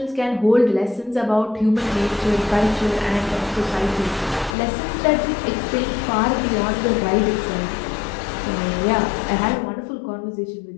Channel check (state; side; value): drops out; right; at 4.5 s